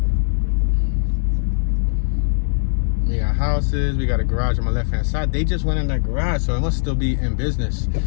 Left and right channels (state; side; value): silent; right; digital silence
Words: We got houses. We got a garage on my left-hand side. They just went in that garage, so it must still be in business.